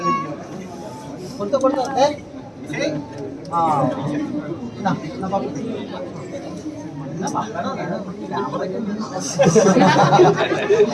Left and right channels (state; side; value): identical; both; correlation 1.00